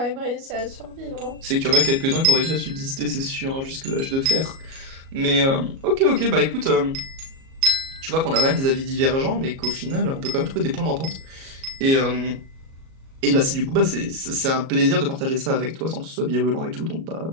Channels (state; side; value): late; left; 37 ms